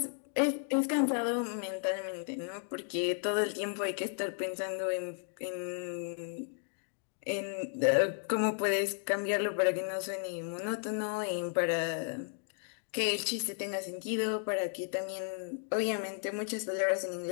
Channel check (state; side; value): silent; right; 55 dB below the other